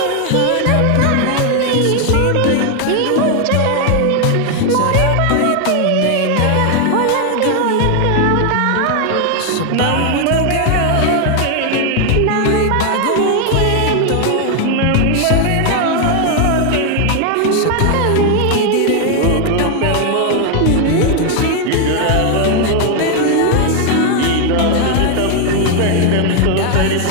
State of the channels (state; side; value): different; both; correlation 0.00